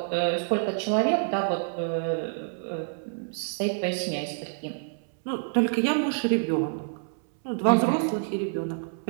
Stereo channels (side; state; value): left; silent; 60 dB below the other